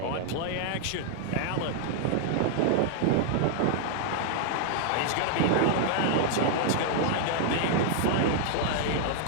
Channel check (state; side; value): different; both; correlation -0.01